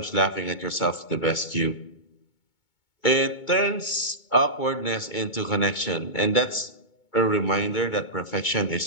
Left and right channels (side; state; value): right; late; 2.2 ms